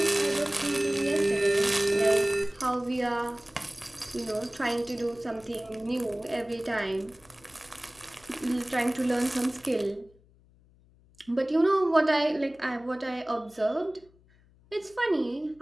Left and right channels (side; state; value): left; noise; hum, 29 dB below the sound